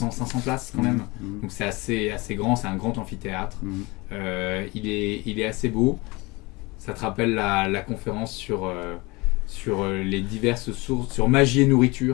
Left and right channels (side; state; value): right; quieter; 24.4 dB